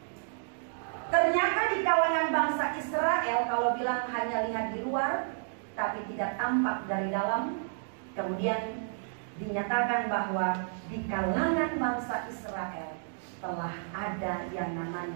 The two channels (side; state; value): left; silent; digital silence